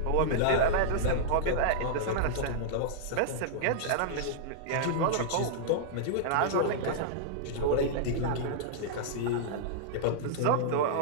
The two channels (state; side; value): different; both; correlation -0.02